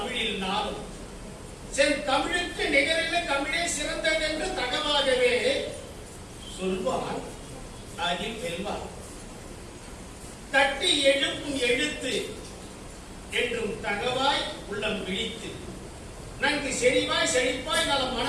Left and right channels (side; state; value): both; identical; correlation 1.00